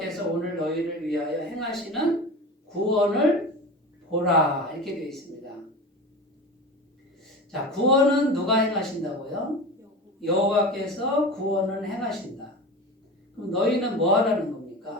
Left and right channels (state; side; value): normal; both; correlation 0.30